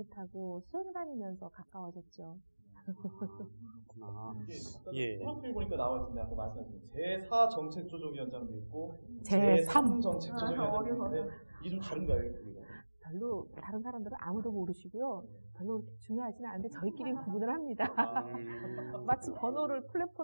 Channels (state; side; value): inverted; both; correlation -1.00